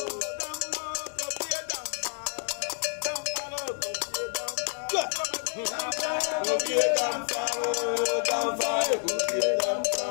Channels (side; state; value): right; silent; 58 dB below the other